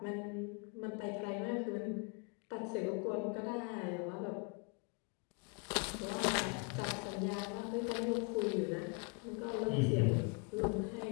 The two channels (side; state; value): right; quieter; 33.2 dB